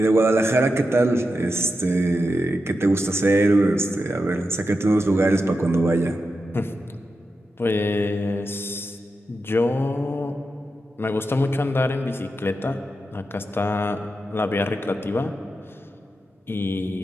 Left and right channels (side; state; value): both; normal; correlation 0.88